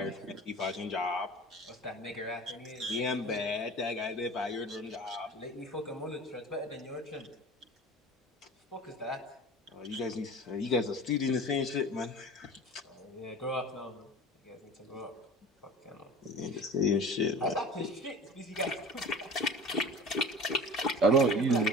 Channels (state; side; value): normal; both; correlation 0.38